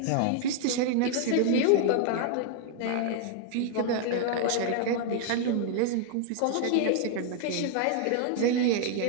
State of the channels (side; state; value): both; different; correlation 0.00